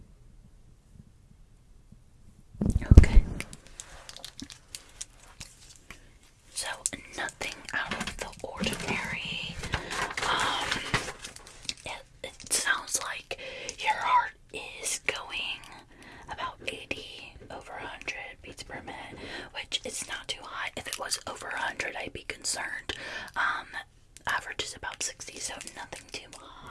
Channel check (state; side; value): identical; both; correlation 1.00